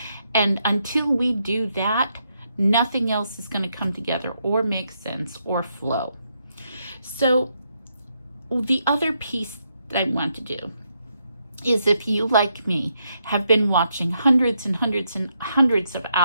And until we do that, nothing else is going to come together or make sense or flow. So the other piece that I want to do is, if you, like me, have been watching hundreds and hundreds and hundreds of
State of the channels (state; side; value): inverted; both; correlation -0.79